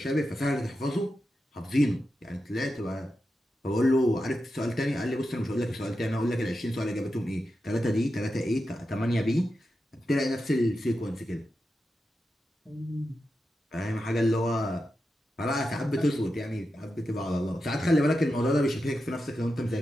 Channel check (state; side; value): normal; both; correlation 0.89